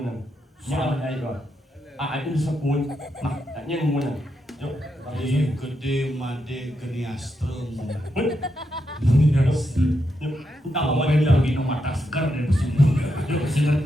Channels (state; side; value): normal; both; correlation 0.83